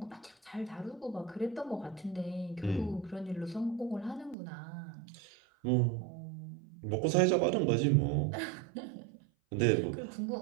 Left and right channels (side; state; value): left; drops out; at 4.4 s